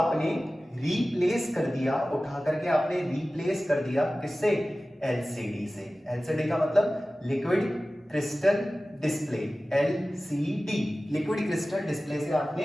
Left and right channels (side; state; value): both; normal; correlation 0.96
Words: रिप्लेस कर दिया, उठा करके आपने रिप्लेस कर दिया किससे, एलसीडी से। एलसीडी का मतलब liquid crystal display, LCD, liquid crystal display से